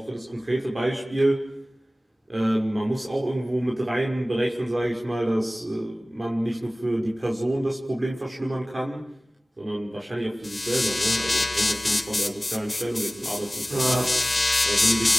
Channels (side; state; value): both; normal; correlation 0.98